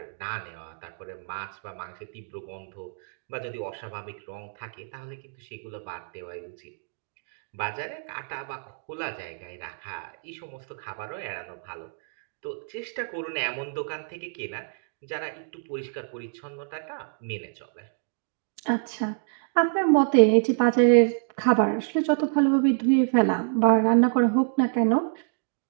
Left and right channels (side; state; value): left; silent; digital silence